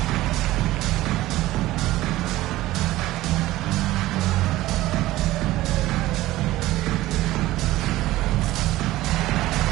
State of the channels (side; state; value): left; quieter; 16.7 dB